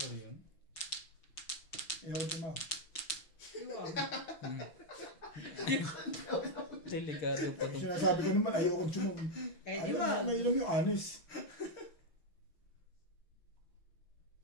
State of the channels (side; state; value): right; late; 5.9 ms